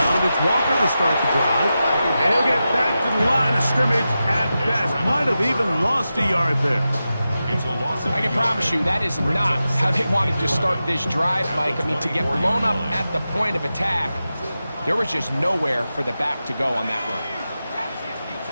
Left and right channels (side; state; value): both; inverted; correlation -0.92